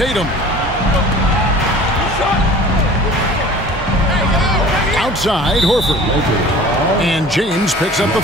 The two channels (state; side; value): normal; both; correlation 0.44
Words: Outside, Horford. And James picks up the